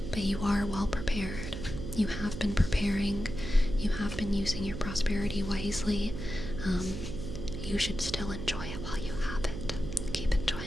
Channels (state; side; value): noise; right; hum, 7 dB below the sound